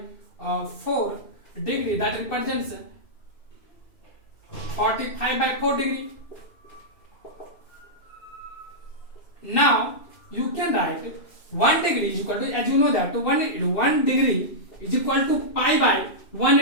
4 degree, that represents 45 by 4 degree. Now you can write 1 degree is equal to, as you know that 1 degree is equal to pi by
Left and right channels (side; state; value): right; late; 2.6 ms